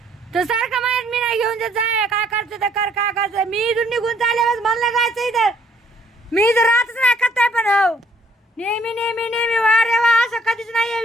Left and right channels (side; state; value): both; normal; correlation 0.63